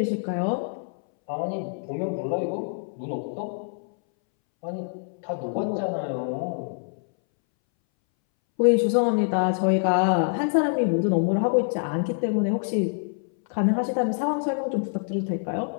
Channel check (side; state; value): right; silent; 61 dB below the other